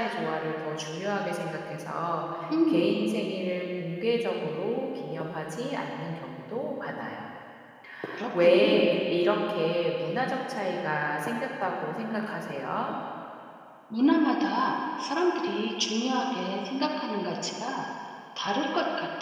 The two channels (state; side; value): identical; both; correlation 1.00